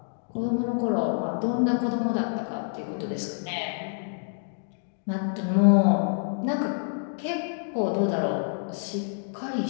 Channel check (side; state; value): right; silent; 60 dB below the other